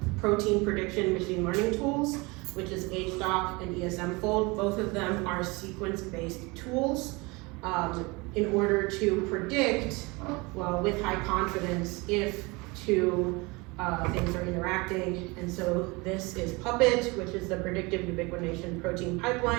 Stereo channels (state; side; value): quieter; left; 25.7 dB